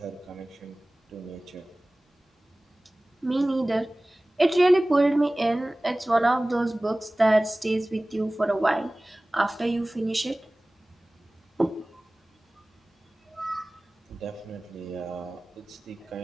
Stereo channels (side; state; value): both; normal; correlation 0.98